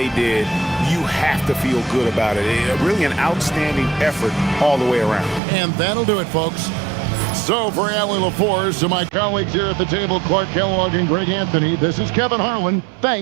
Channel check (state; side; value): drops out; left; at 5.4 s